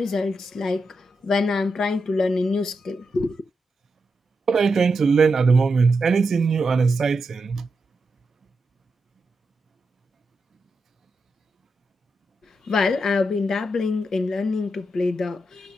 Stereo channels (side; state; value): both; normal; correlation 0.86